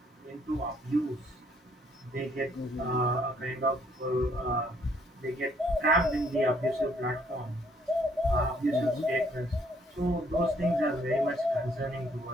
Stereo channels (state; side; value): normal; both; correlation 0.66